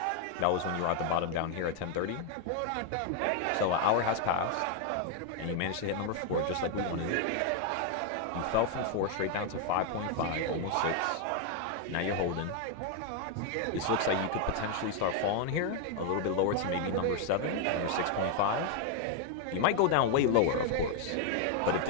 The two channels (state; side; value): different; both; correlation 0.01